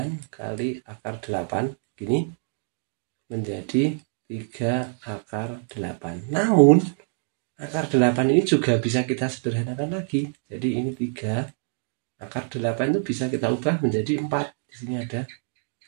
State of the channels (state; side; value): silent; left; 61 dB below the other